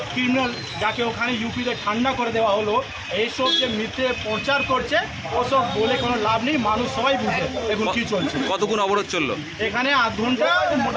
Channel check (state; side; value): identical; both; correlation 1.00